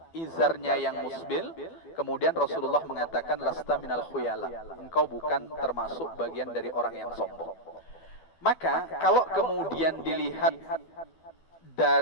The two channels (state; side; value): late; right; 12 ms